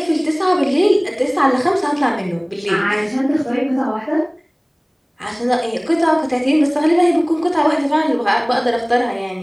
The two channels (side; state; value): both; identical; correlation 1.00